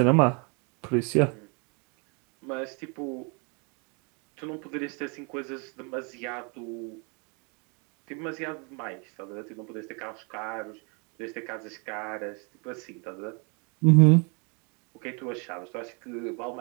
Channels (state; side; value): quieter; left; 33.8 dB